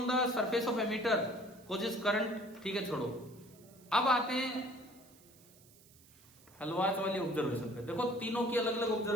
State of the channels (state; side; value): noise; right; hiss, 25 dB below the sound